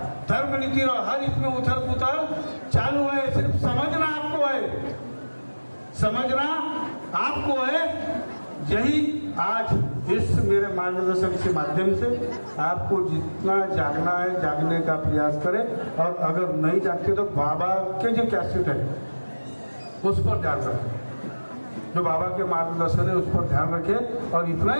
धर्म नीति रहो, हर इसमें उथल पुथल चालू है। सिर्फ समझना आपको है, समझना आपको है। यही आज इस मेरे मार्गदर्शन के माध्यम से आपको जितना जागना है जागने का प्रयास करें, और अगर नहीं जागते तो बाबा के जो कैसेट है उस पर ध्यान रखें, जो बाबा के मार्गदर्शन है उस पर ध्यान रखें। और इतना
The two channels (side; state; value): both; inverted; correlation -1.00